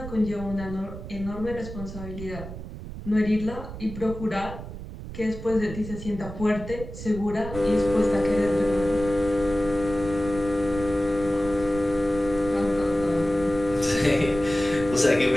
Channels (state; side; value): noise; right; rumble, 11 dB below the sound